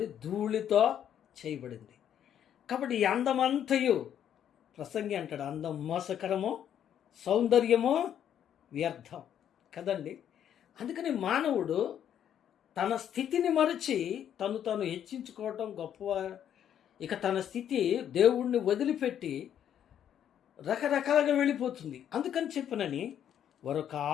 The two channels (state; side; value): quieter; right; 9.7 dB